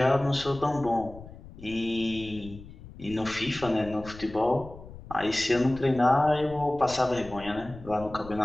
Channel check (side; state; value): left; noise; rumble, 16 dB below the sound